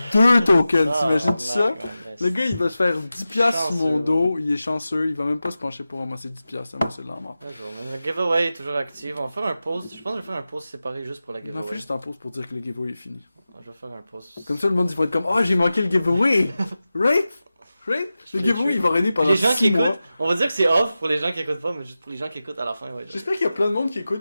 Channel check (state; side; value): inverted; both; correlation -0.94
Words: 2 tokens. T'imagines ça? Le gars, il va se faire 10$ sur mon Chanceux, dos. Il est chanceux. Il va même pas se pencher pour ramasser 10$. Ça c'est de la mort. Le giveaway est toujours actif. On va faire un post. Je pense que je vais faire un post séparé juste pour la On giveaway. en fait juste un pause pour dire que le giveaway est fini. Je vais faire un post. Comme ça, le monde, il va être comme, oh, j'ai manqué le giveaway! Right? Right? Le giveaway, il va régner pendant Les gens 6 qui mois. écoutent, on va dire que c'est off pour les gens qui écoutent pas, mais juste pour les gens qui écoutent à la fin, ouais. J'espère qu'il y a plein de monde qui